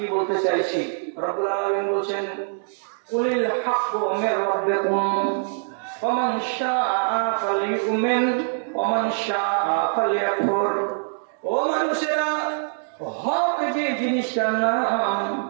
বলতে চাইছি। রব্বুল আলামিন বলছেন কুলিল হাক্কু মির রাব্বিকুম ফামান শাআ ফালিউমিন ওয়ামান শাআ ফালিয়াকফুর। ও মানুষেরা, হক যে জিনিসটার নাম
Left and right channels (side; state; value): left; silent; digital silence